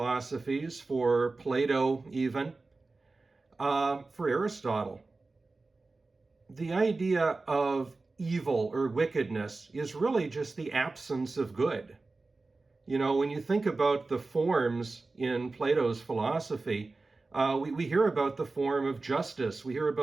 for Plato even, for Aristotle, the idea of evil or wickedness is really just the absence of good. You know, when you think about the forms in Plato's philosophy, we hear about the form of justice, we hear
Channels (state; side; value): quieter; left; 3.6 dB